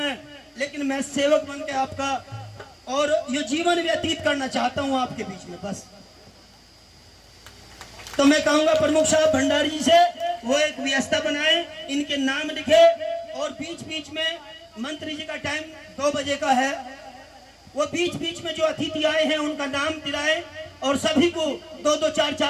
लेकिन मैं सेवक बन के आपका और ये जीवन व्यतीत करना चाहता हूँ आपके बीच में बस। तो मैं कहूंगा प्रमुख साहब भंडारी जी से वो एक व्यवस्था बनाए, इनके नाम लिखे, और बीच बीच में मंत्री जी का टाइम 2 बजे का है, वो बीच बीच में जो अतिथि आए हैं उनका नाम दिलाए और सभी को 2-2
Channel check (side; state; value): both; identical; correlation 1.00